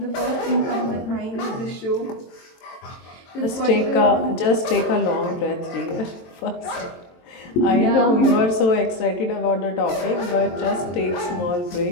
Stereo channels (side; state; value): right; late; 23 ms